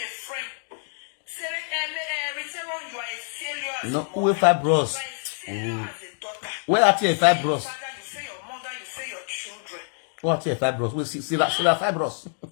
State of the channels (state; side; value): silent; right; digital silence